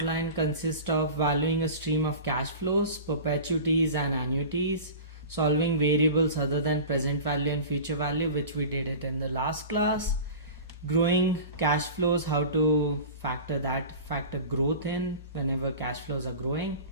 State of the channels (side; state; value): both; inverted; correlation -0.34